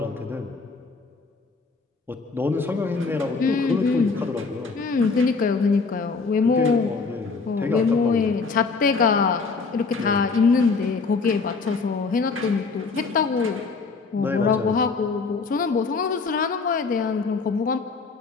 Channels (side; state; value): right; quieter; 4.4 dB